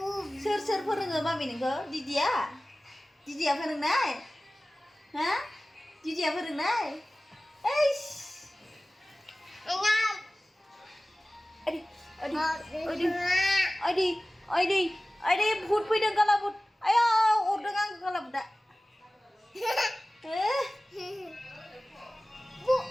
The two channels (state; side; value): normal; both; correlation 0.97